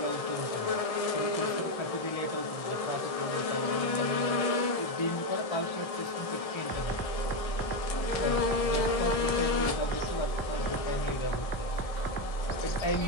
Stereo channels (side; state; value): right; late; 1.6 ms